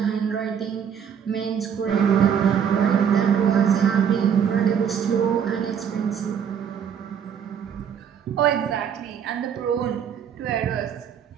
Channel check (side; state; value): left; quieter; 7.9 dB